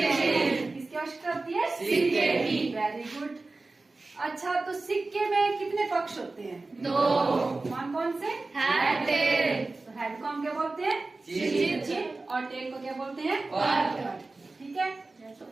किसकी आवश्यकता होती है? सिक्के की। Very good. अच्छा, तो सिक्के में कितने पक्ष होते हैं? 2। कौन कौन से? Head, tell. तो हेड को हम क्या बोलते हैं? चिट। और टेल को क्या बोलते हैं? पट। ठीक है। तो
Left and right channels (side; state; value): left; quieter; 3.4 dB